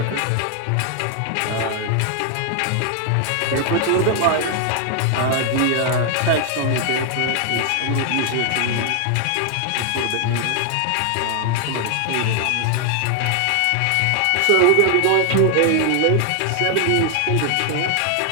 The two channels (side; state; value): both; different; correlation 0.00